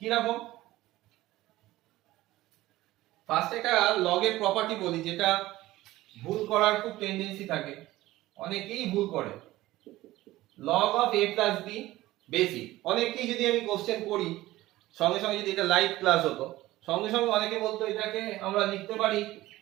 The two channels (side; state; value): left; quieter; 16.9 dB